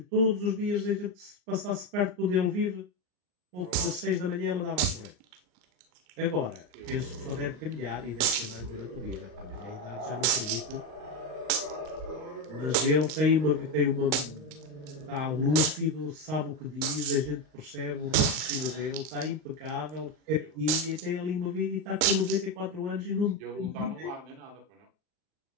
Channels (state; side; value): late; left; 39 ms